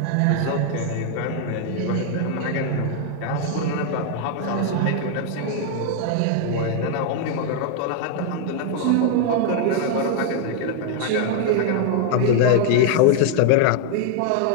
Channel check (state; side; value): different; both; correlation 0.00